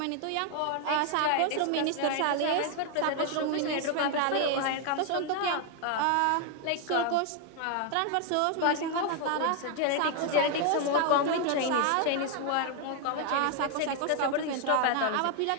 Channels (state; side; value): different; both; correlation 0.01